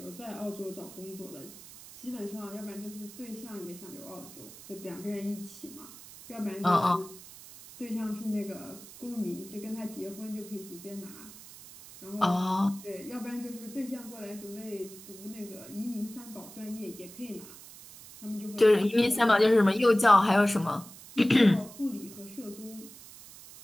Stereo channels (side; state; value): right; noise; hiss, 17 dB below the sound